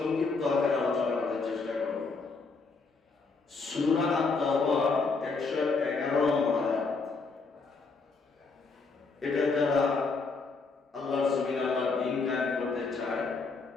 আকারে আলোচনা করার চেষ্টা করব। সূরা আত-তাওবার 111 নম্বর আয়াত। এটা যারা আল্লাহর জমিনে আল্লাহর দ্বীন কায়েম করতে চায়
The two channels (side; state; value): right; quieter; 4.2 dB